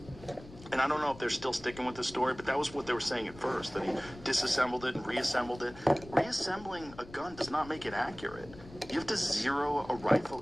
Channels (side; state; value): left; noise; rumble, 18 dB below the sound